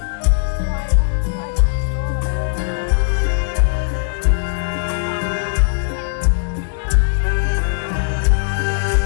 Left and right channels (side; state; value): right; silent; 66 dB below the other